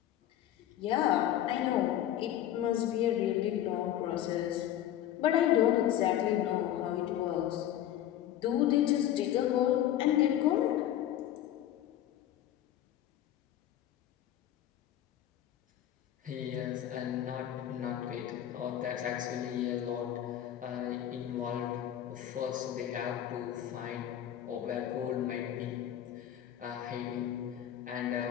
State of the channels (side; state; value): right; quieter; 11.8 dB